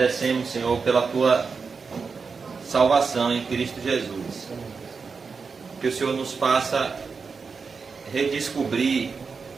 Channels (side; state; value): left; quieter; 5.1 dB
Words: Senhor, pela tua salvação em Cristo Jesus. Que o Senhor nos faça redescobrir